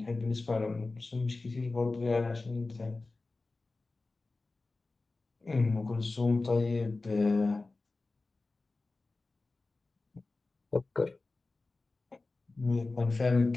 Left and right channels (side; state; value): right; quieter; 3.5 dB